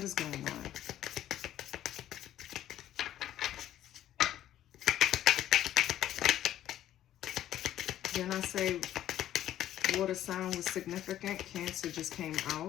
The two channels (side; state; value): right; quieter; 12.2 dB